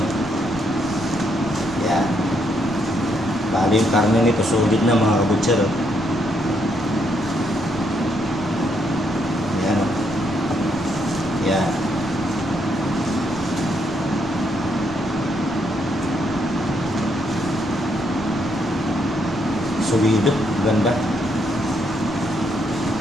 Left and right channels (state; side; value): noise; right; rumble, 17 dB below the sound